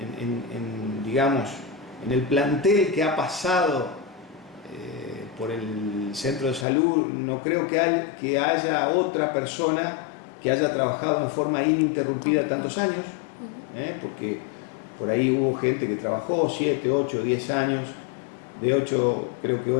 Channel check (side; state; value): right; drops out; at 6.7 s